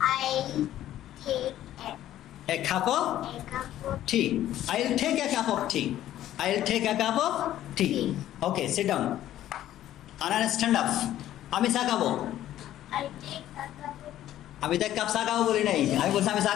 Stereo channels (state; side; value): quieter; right; 12.8 dB